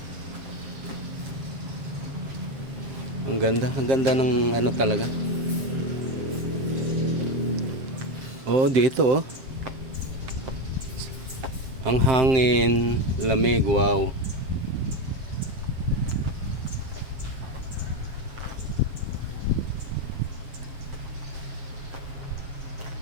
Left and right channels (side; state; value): left; late; 7.5 ms